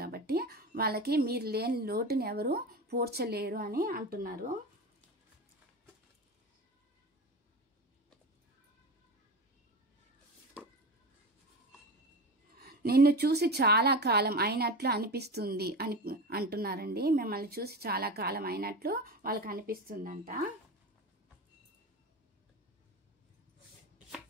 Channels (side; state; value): both; normal; correlation 0.25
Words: కాబట్టి వాళ్ళకి మీరు లేని లోటుని ఎవరు పూడ్చలేరు అని అంటున్నారు. నిన్ను చూసి చాలా కాలం అయినట్లు అనిపిస్తుంది అని అంటున్నారండి. మిమ్మల్ని చూసి చాలా కాలం అయినట్లు వాళ్ళకి అనిపిస్తుందంట.